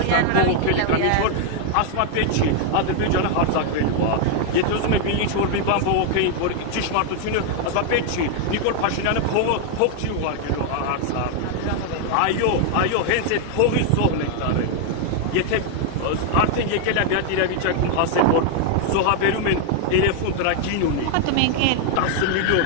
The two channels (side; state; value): both; different; correlation 0.00